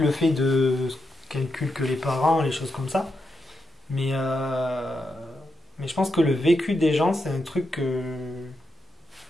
le fait de calculer que les parents, les choses comme ça. Mais, mais je pense que le vécu des gens, c'est un truc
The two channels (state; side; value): normal; both; correlation 0.85